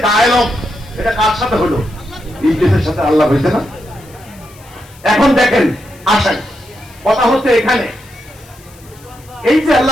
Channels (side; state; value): left; noise; hiss, 25 dB below the sound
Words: ডায়ালগ, এটা কার সাথে হলো? ইবলিসের সাথে আল্লাহ হয়েছে না? এখন দেখেন, আসেন, কথা হচ্ছে এখানে, এই যে